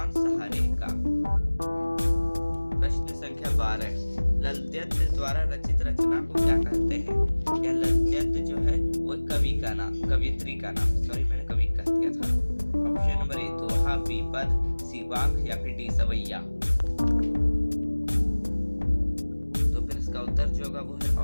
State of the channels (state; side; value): inverted; both; correlation -1.00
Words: कवियत्री का नाम, सॉरी मैंने कवि कह दिया था। ऑप्शन नंबर ए दोहा, बीपद, सी वाक या फिर डी सवैया। तो फिर इसका उत्तर जो होगा वो है